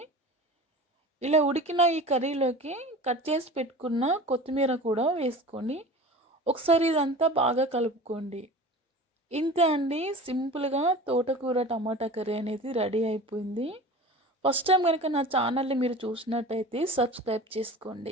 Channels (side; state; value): both; normal; correlation 0.37